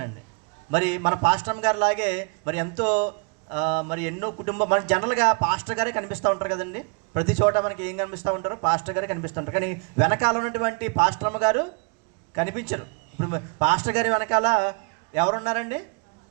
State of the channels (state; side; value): quieter; left; 33.7 dB